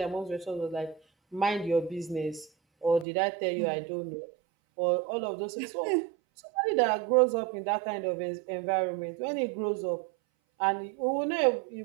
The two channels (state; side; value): drops out; left; at 3.1 s